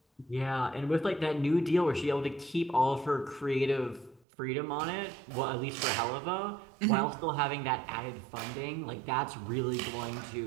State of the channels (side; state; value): left; drops out; at 4.2 s